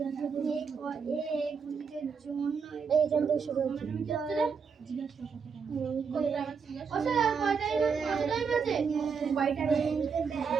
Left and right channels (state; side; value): quieter; left; 5.9 dB